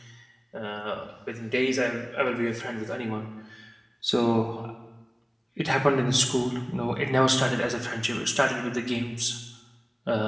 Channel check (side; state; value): both; identical; correlation 1.00